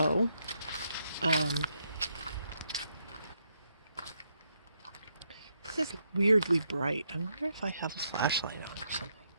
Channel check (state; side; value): inverted; both; correlation -0.77